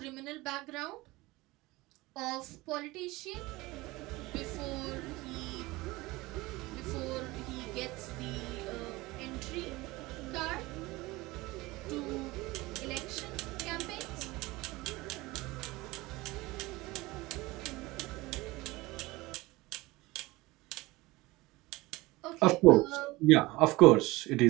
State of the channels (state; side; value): quieter; left; 20.9 dB